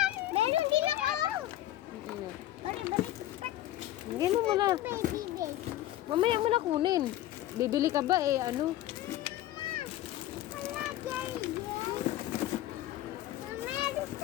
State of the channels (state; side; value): quieter; right; 14.1 dB